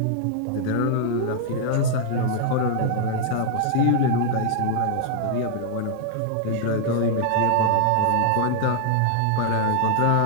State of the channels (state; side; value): different; both; correlation -0.01